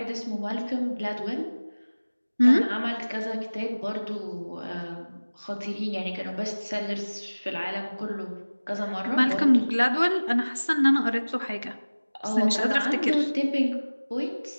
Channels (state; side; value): inverted; both; correlation -1.00